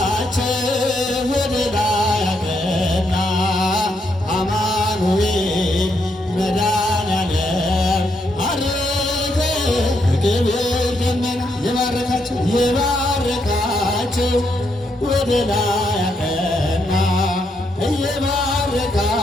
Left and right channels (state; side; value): normal; both; correlation 0.78